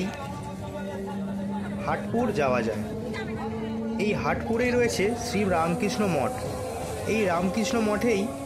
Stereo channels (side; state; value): both; identical; correlation 1.00